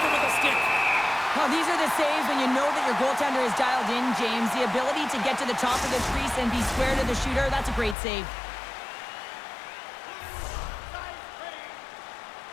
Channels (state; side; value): drops out; right; at 8.0 s